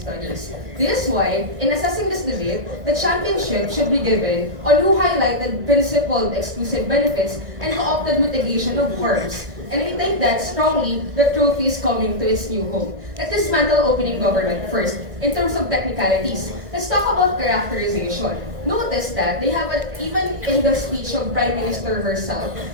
studies. This is why, in assessing this debate, the championship should be given on who highlighted principled exclusive benefits and co-opted mitigation of harms. And we think that strongly the trophy is coming to its new home. Let's dismantle opening government first. In terms of technicalities, let's talk about characterization. Notice that they have even in the speech of Prime Minister herself,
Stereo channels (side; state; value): left; late; 1.6 ms